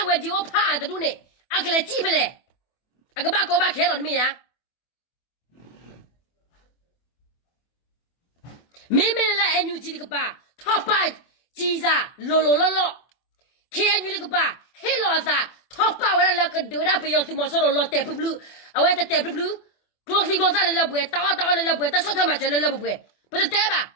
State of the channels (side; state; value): right; late; 24 ms